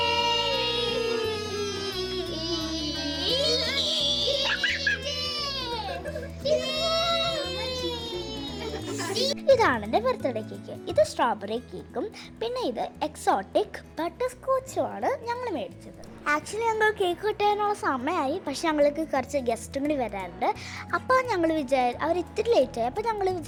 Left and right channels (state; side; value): identical; both; correlation 1.00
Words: ഇതാണ് എൻ്റെ ബർത്ത്ഡേ കേക്ക്. ഇത് സ്ട്രോബെറി കേക്കും പിന്നെ ഇത് എക്സോട്ടിക് ബട്ടർ സ്കോച്ചുമാണ് ഞങ്ങൾ മേടിച്ചത്. ആക്ച്വലി ഞങ്ങൾ കേക്ക് കിട്ടാനുള്ള സമയമായി, പക്ഷെ ഞങ്ങൾക്ക് കുറച്ച് ഗസ്റ്റും കൂടി വരാറുണ്ട്. അപ്പോൾ ഞങ്ങൾ അവർ ഇത്തിരി ലേറ്റായി. അപ്പോൾ ഞങ്ങൾ